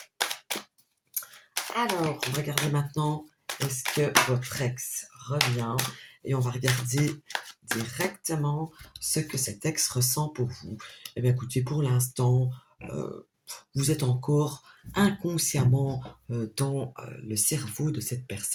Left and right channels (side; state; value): both; identical; correlation 1.00